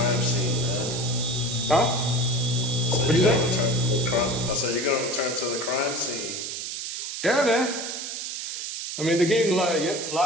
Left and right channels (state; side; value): noise; right; hiss, 5 dB below the sound